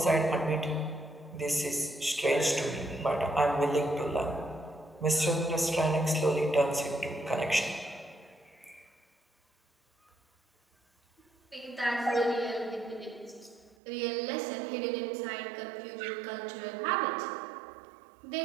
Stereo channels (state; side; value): drops out; left; at 13.8 s